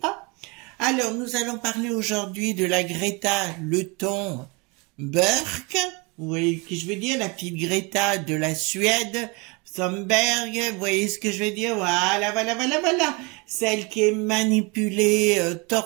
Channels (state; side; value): quieter; left; 28.6 dB